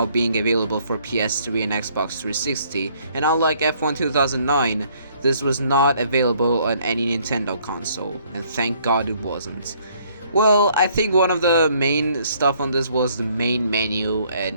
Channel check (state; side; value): inverted; both; correlation -0.64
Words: being available for PS3 and Xbox 360, and unlike F1 2009, this was not available on any Nintendo console, and thank God it wasn't. Well, I think one of the main stuff on this was the main menu,